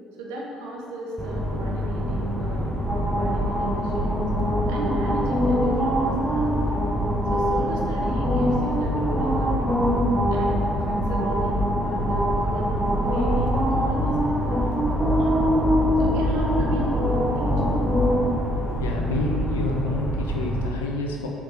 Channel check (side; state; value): both; normal; correlation 0.70